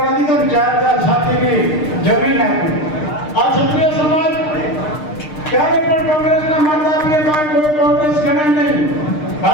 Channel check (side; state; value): right; late; 6.6 ms